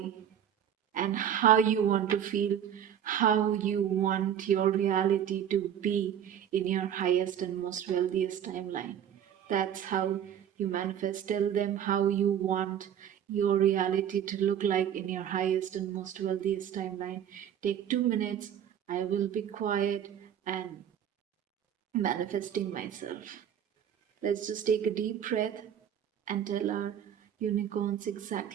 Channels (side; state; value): left; quieter; 9.5 dB